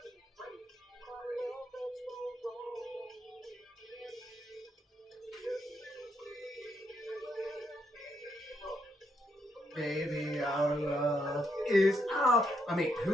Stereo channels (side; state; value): both; normal; correlation 0.77